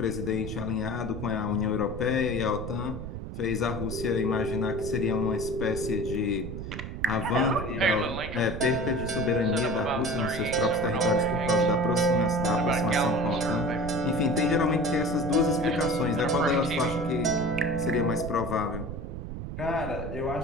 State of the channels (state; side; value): noise; right; rumble, 8 dB below the sound